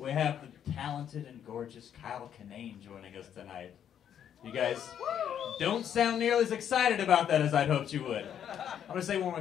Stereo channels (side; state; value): right; quieter; 9.3 dB